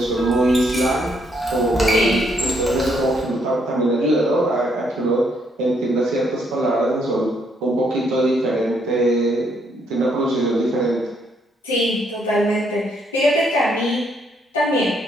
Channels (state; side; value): normal; both; correlation 0.72